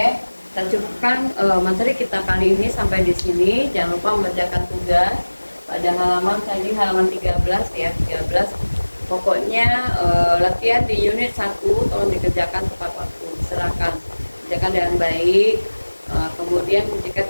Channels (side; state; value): both; inverted; correlation -1.00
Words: kita cukupkan materi kita kali ini sampai di sini. Jangan lupa mengerjakan tugas pada halaman tadi, halaman 13 ya, 13. Pokoknya latihan di unit 1 tolong dikerjakan tepat waktu, silakan kerjakan dengan baik. Kemudian jika